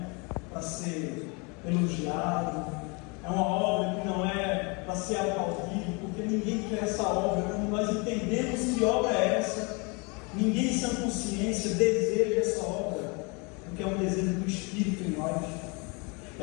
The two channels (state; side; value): quieter; right; 30.8 dB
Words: para ser elogiado, é uma obra que não é para ser aplaudido, porque ninguém quer essa obra. Quando nós entendemos que obra é essa, ninguém sem consciência deseja essa obra, porque é um desejo do Espírito em nós.